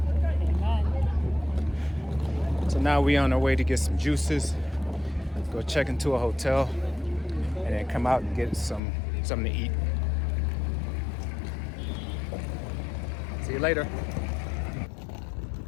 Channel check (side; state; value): right; drops out; at 8.8 s